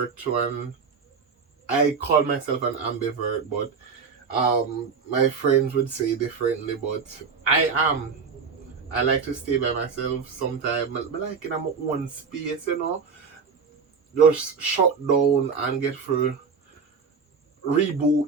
to I call myself an ambivert, but my friends would say differently. But I am. I like to stay by myself sometimes. But like in my own space, just shut down and get through, reboot,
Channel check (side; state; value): left; quieter; 5.5 dB